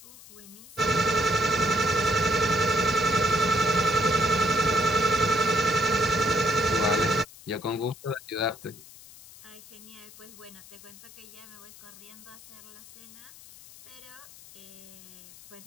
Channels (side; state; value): left; noise; hiss, 20 dB below the sound